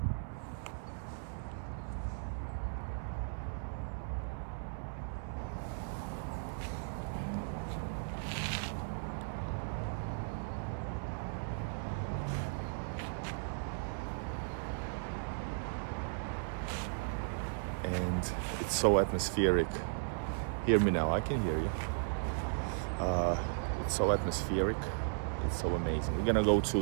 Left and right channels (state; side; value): silent; left; 54 dB below the other